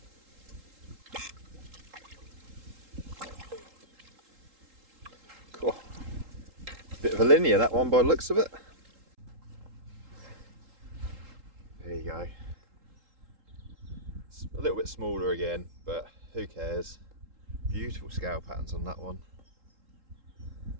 Cool. Bit of a linear, that one, by the looks of it. There you go. It's a little bit smaller again, but who cares? Beautiful scale patterns on that one.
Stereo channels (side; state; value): left; late; 3.8 ms